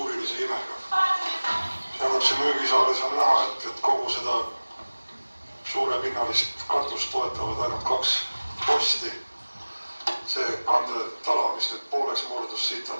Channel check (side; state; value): both; inverted; correlation -1.00